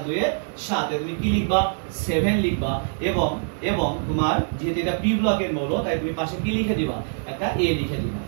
2 এ 7। তুমি কি লিখবা, 7 লিখবা এবং এবং তোমার যেহেতু এটা পি ব্লকের মৌল, তাই তুমি পাশে কি লিখে দিবা, একটা এ লিখে দিবা।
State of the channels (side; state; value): left; silent; 63 dB below the other